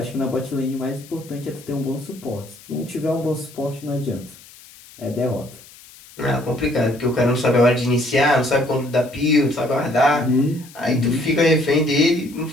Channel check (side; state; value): left; noise; hiss, 22 dB below the sound